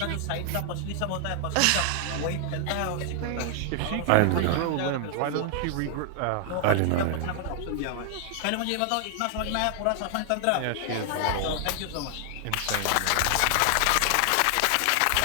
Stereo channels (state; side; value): different; both; correlation 0.00